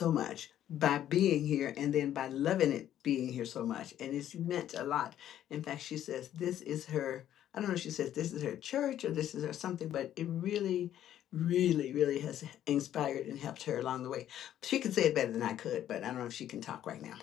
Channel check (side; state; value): right; quieter; 11.4 dB